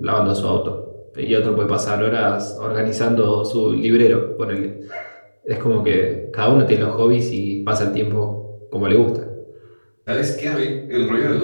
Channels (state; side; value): inverted; both; correlation -1.00